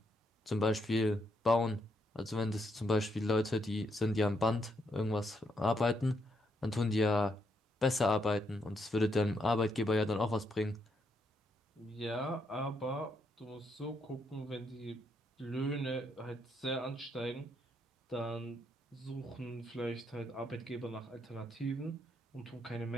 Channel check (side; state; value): both; normal; correlation 0.77